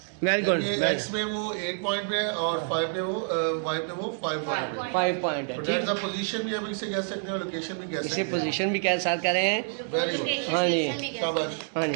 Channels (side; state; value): left; silent; digital silence